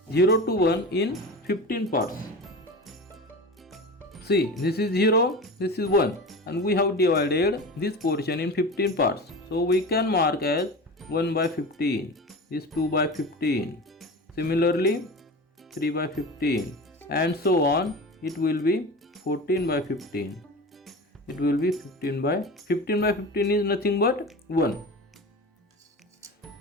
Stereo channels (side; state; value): both; normal; correlation 0.31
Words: 0 to 1 in 15 parts. See, this is 0, this is 1, and we have divided this portion in 15 parts. So we can mark as 1 by 15, this 2 by 15, similarly 3 by 15, and so on. It will be 14 by 15. It will be 15 by 15 is nothing but 1.